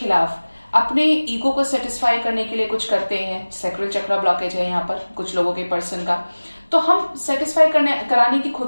अपने ईगो को सेटिस्फाई करने के लिए कुछ करते हैं, सैक्रल चक्र ब्लॉकेज है यहाँ पर कुछ लोगों के पर्सन का, तो हम सेटिस्फाई कराने की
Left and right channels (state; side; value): inverted; both; correlation -1.00